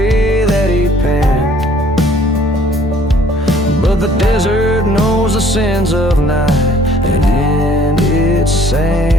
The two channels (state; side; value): normal; both; correlation 0.58